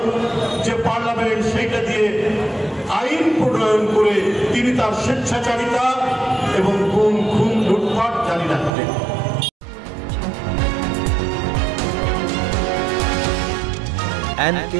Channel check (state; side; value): drops out; left; at 8.7 s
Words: যে পার্লামেন্ট সেইটা দিয়ে আইন প্রণয়ন করে তিনি তার স্বেচ্ছাচারিতা এবং গুম, খুন, লুটপাট জারি রাখতেন।